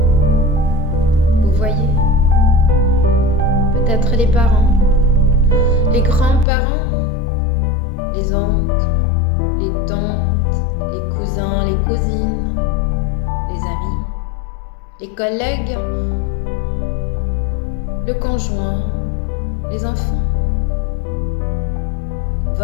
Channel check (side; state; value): right; drops out; at 6.5 s